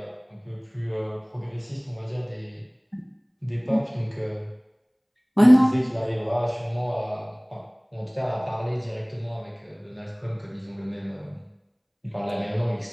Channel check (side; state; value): both; identical; correlation 1.00